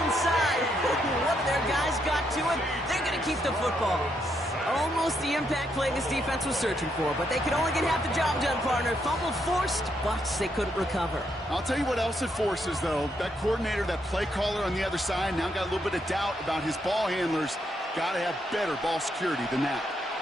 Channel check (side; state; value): both; normal; correlation 0.77